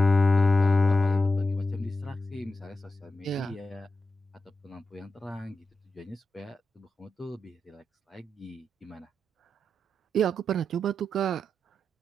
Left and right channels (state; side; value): normal; both; correlation 0.89